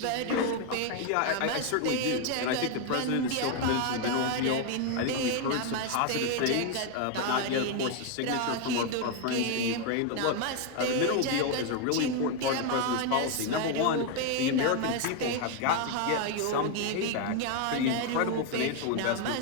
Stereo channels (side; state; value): both; different; correlation 0.01